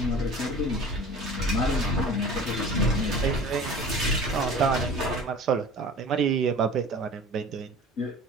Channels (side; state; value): both; normal; correlation 0.41